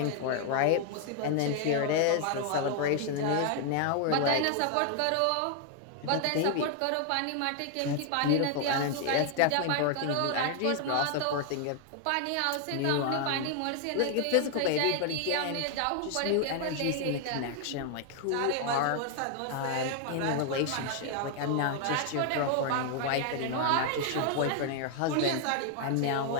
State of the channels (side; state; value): both; different; correlation 0.00